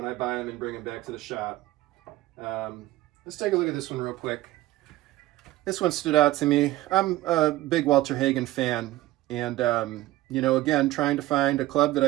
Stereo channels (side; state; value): left; quieter; 16.6 dB